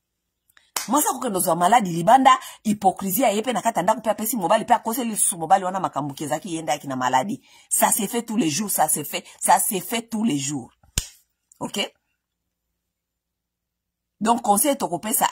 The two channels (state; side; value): identical; both; correlation 1.00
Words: mwasi akokendo zo maladi libanda hypocrisie yepe na kata ndako pe pesi mobali pe akoseli su mobali wana makambuke zaki yenda yaki na maladi ça se fait tous les jours, ça se fait tous les jours. OK, donc conseil tokopé ça